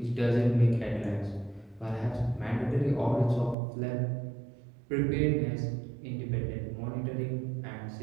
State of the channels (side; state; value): left; drops out; at 3.6 s